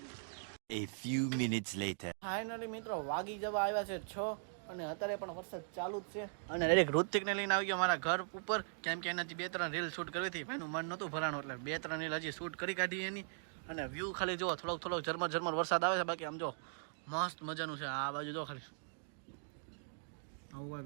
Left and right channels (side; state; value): left; silent; digital silence